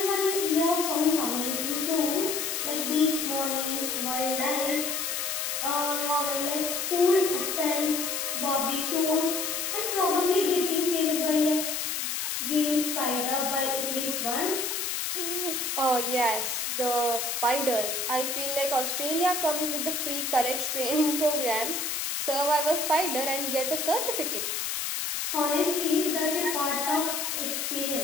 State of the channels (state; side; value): noise; left; hiss, 1 dB below the sound